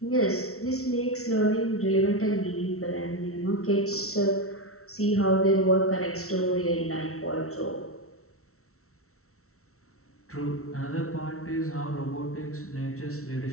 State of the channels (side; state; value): right; late; 0.63 ms